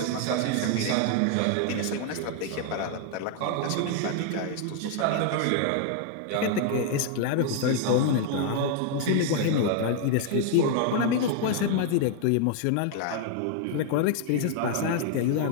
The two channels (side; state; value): both; different; correlation 0.00